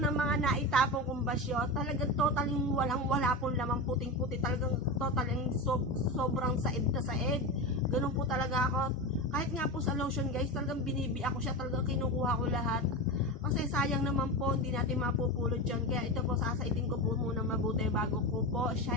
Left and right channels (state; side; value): normal; both; correlation 0.21